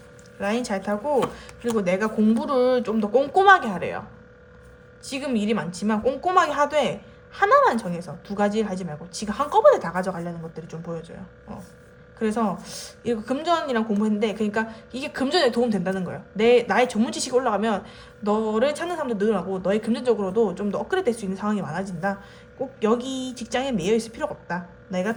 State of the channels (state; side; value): identical; both; correlation 1.00